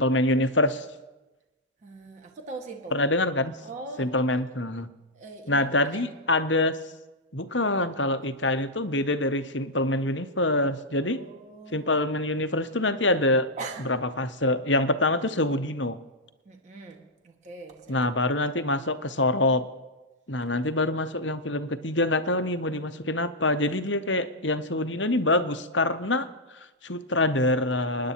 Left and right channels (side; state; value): both; normal; correlation -0.05